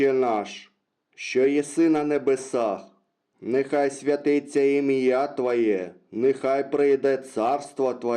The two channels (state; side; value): identical; both; correlation 1.00